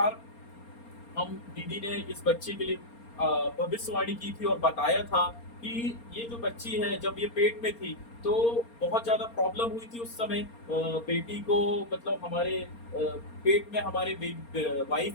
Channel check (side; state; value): right; late; 4.3 ms